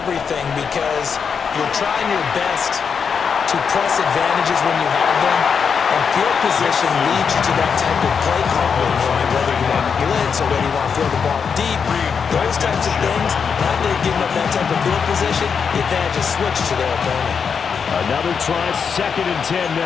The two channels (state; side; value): quieter; right; 6.3 dB